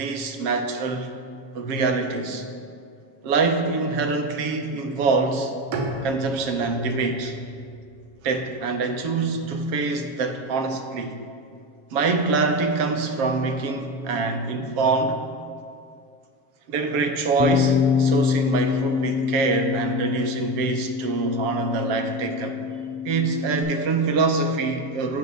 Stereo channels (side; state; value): left; late; 7.3 ms